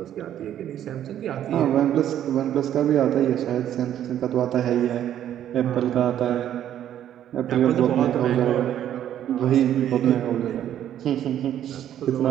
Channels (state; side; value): quieter; left; 10.9 dB